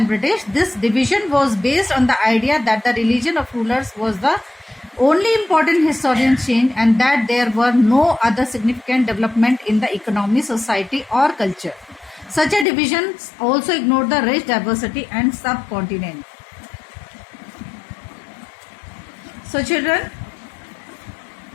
British. This division was based on the idea that the religion of rulers was the only important historical change and that there were no other significant development in the economy, society or culture. Such a division also ignored the rich diversity and subcontinent. So children,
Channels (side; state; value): right; drops out; at 12.7 s